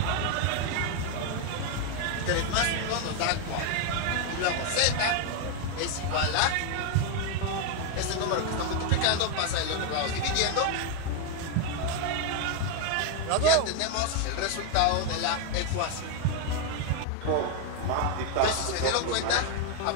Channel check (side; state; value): both; different; correlation 0.01